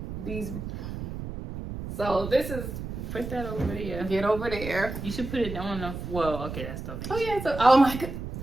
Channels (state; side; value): noise; right; rumble, 7 dB below the sound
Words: So this is. Put that over there. Get over there. You should put it on the. Well, okay, that's donation. Oh yeah. So oh my god.